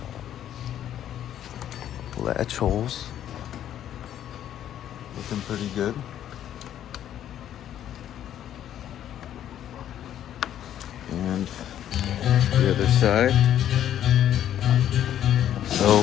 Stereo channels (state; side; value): quieter; right; 10.9 dB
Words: latch holes. Looking pretty good. And the other side.